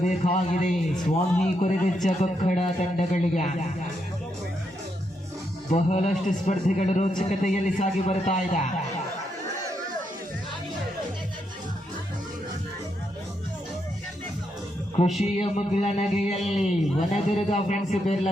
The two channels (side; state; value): both; normal; correlation 0.80